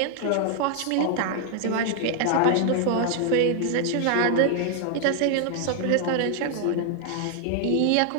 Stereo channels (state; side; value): different; both; correlation 0.00